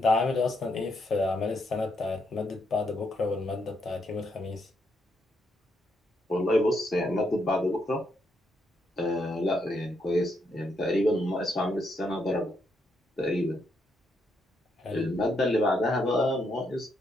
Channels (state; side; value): normal; both; correlation 0.77